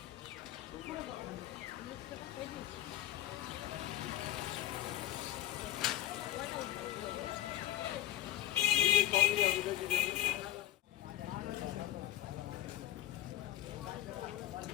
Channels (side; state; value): right; quieter; 14.3 dB